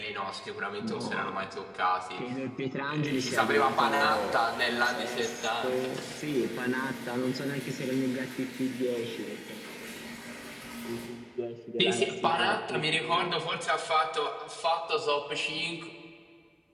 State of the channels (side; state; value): both; identical; correlation 1.00